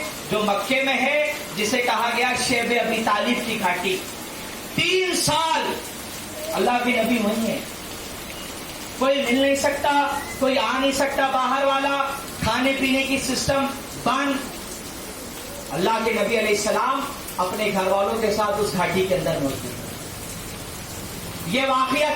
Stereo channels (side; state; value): both; identical; correlation 1.00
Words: جو مکے میں ہے، جسے کہا گیا شیب ابی طالب کی گھاٹی۔ 3 سال اللہ کے نبی وہیں ہے، کوئی مل نہیں سکتا، کوئی آ نہیں سکتا باہر والا، کھانے پینے کی سسٹم بند۔ اللہ کے نبی علیہ السلام اپنے گھر والوں کے ساتھ اس گھاٹی کے اندر موجود ہیں۔ یہ واقعہ